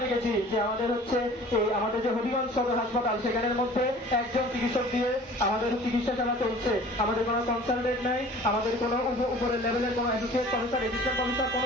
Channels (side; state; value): both; normal; correlation 0.46